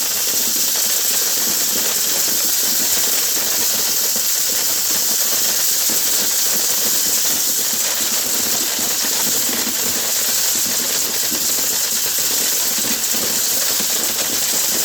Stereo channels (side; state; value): both; identical; correlation 1.00